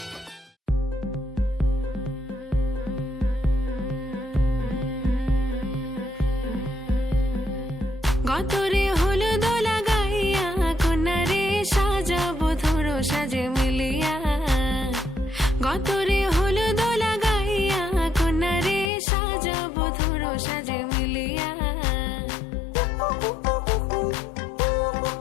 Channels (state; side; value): drops out; right; at 18.9 s